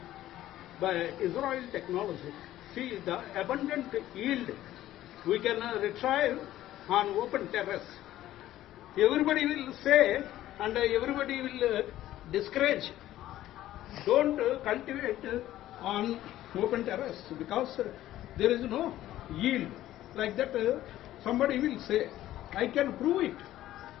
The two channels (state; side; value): quieter; right; 14.0 dB